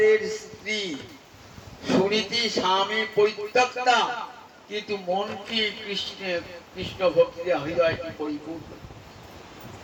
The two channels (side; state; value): both; identical; correlation 1.00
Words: স্ত্রী। সুনীতি স্বামী পরিত্যক্তা, কিন্তু মনটি কৃষ্ণ ভক্তি হৃদয়টি পরিপূর্ণ।